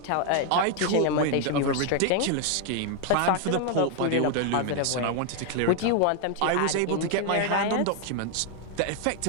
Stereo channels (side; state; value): both; different; correlation 0.00